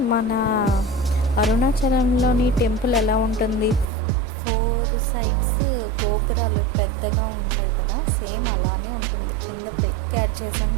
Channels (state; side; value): drops out; left; at 3.9 s